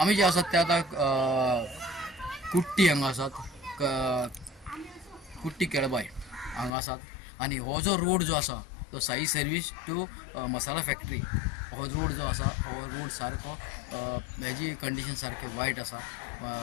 जे आसात ते आतां कुट्टी हांगा आसात, कुट्टी केळबाय हांगा आसात. आनी हो जो रोड जो आसा तो Sai service to masala factory हो रोड जो आसा हो रोड सारको हेजी कंडिशन सारकें वायट आसा,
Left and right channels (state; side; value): drops out; right; at 6.7 s